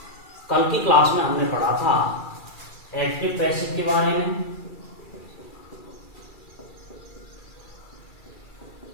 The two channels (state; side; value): late; right; 2.3 ms